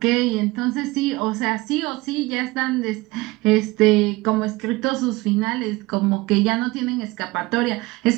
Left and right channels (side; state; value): left; quieter; 21.2 dB